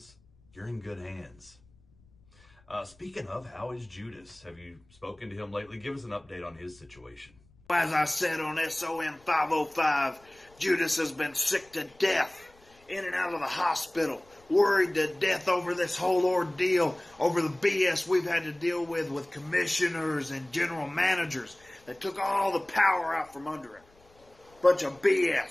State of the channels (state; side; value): noise; left; rumble, 30 dB below the sound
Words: You're in good hands. Speaking of, how is Judas? Have you spoken to him lately? Give us an update on his situation. As I said on SOM 505, Judas has been sick to death, in and out of the hospital, worried to death over this whole ordeal, over the BS we've had to deal with commissioners and general managers that took all the power out from under him. Bunch of